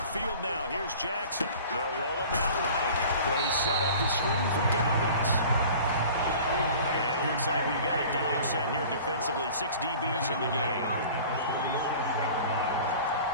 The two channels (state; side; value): inverted; both; correlation -0.43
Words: now, here's Jackson. They'll roll him out right. They set up the screen for Dobbins. And it looks like we've got a dime set here defensively. 6 DBs in the game.